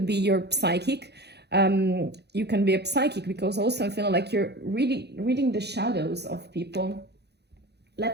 be your psychic. You can be a psychic, because also I'm feeling like you're really reading the shadows of people.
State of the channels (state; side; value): late; left; 0.48 ms